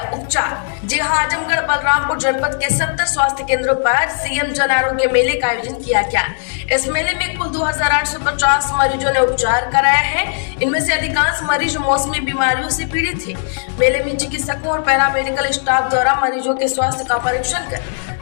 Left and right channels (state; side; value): silent; right; digital silence